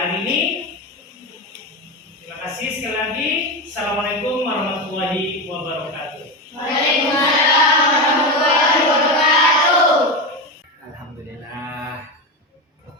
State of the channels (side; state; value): both; normal; correlation 0.17